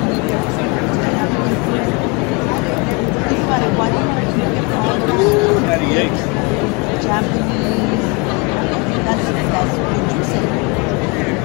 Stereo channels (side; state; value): right; quieter; 29.4 dB